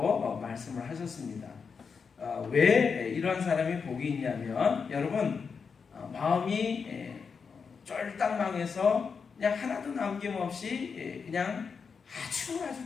말씀을 하셨습니다. 왜 이런 사람이 복이 있냐면, 여러분, 마음이 쫄딱 망해서 그냥 하나도 남김없이 그냥 아주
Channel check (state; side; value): quieter; right; 5.7 dB